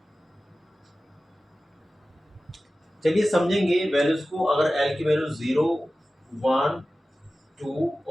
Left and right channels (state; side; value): normal; both; correlation 0.96